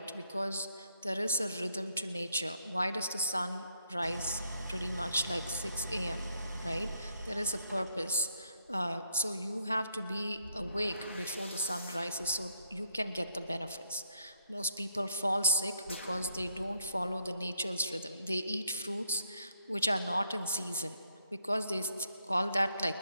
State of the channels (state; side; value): inverted; both; correlation -0.74